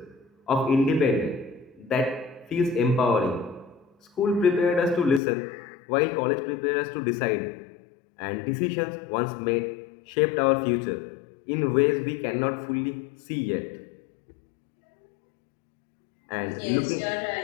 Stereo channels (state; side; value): drops out; right; at 5.2 s